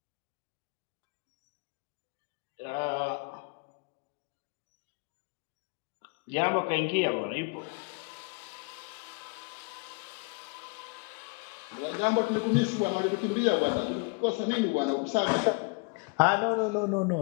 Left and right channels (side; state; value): right; quieter; 32.3 dB